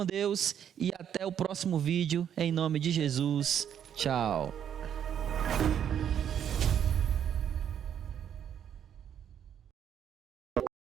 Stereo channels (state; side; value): quieter; left; 9.1 dB